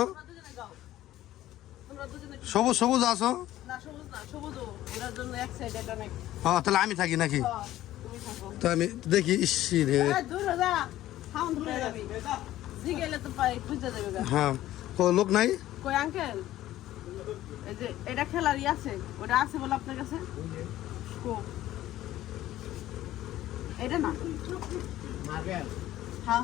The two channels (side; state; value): right; quieter; 14.3 dB